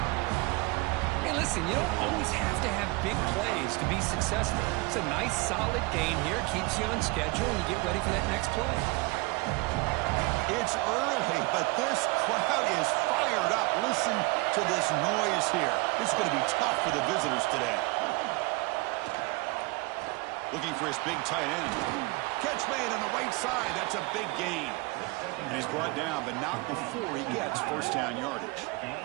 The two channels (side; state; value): left; quieter; 25.0 dB